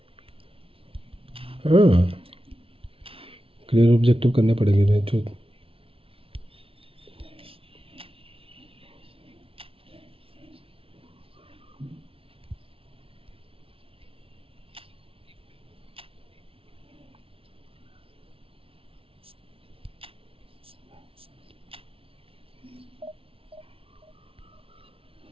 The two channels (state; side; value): late; left; 0.26 ms